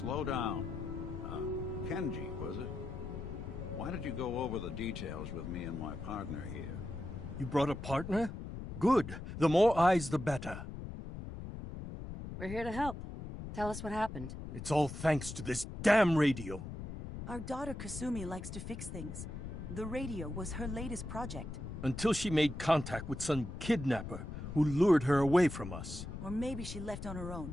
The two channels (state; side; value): noise; left; rumble, 8 dB below the sound